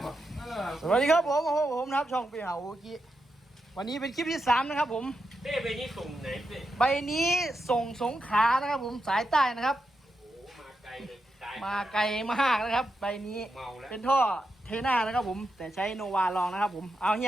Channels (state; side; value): normal; both; correlation 0.86